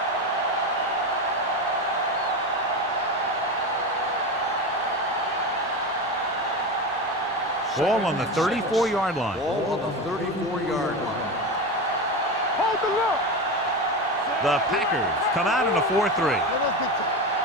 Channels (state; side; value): normal; both; correlation 0.21